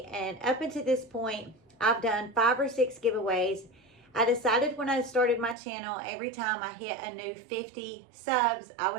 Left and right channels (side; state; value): left; drops out; at 5.6 s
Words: and up until this point, I've done 5 or 6 giveaways. I decided when I started my channel, every time I hit a new 50 subs, I